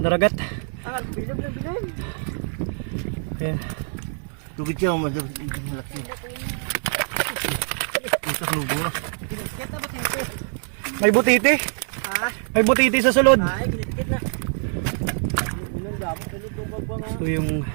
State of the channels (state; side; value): silent; left; 57 dB below the other